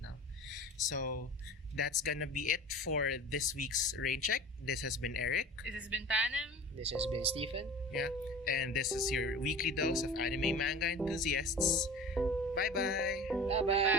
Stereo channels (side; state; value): both; normal; correlation 0.38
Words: So that's gonna be it for this week's Rain Check. This has been Eric. This has been Panem. This has been Stephen. Yeah, and this is your weekly dose of anime manga enthusiasts. Bye bye. Bye bye.